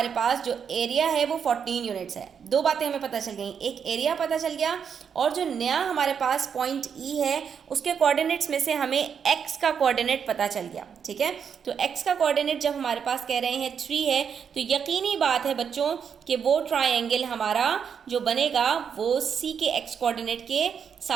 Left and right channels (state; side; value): quieter; left; 7.2 dB